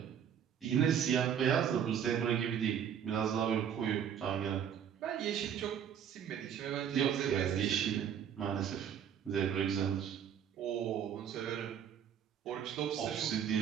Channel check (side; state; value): left; quieter; 8.7 dB